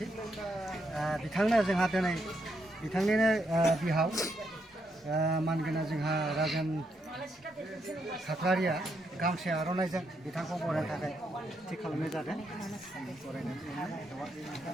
बिथांनो जोंहा दिनै बिथांनिनो बिहाव मानगोनां जोंहा राजेन खाख्लारिया गामसे आर'नाइजों बिथांखौ बरायनो थाखाय थि खालामनाय जादों।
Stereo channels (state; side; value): normal; both; correlation 0.79